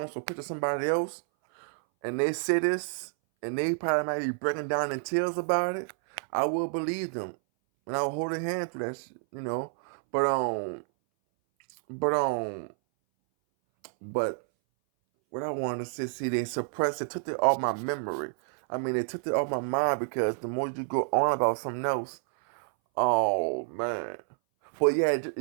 so picture somebody else and they say this, and they probably might be breaking down in tears about it. I will believe them, and I will hold a hand through that shit. But but but what I wanted to say, see, they suppressed it, took it off my memory. I mean, they took it off my mind, because the more you go on about something else, oh man. But yeah,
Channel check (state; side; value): silent; left; 58 dB below the other